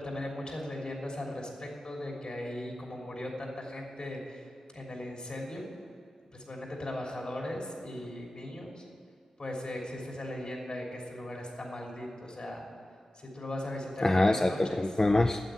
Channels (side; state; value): both; normal; correlation 0.95